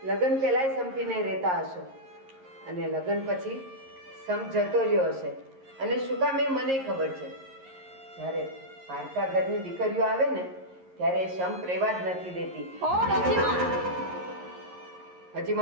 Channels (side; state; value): left; late; 11 ms